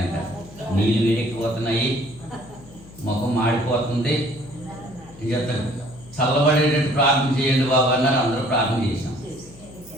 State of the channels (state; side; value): noise; left; hum, 21 dB below the sound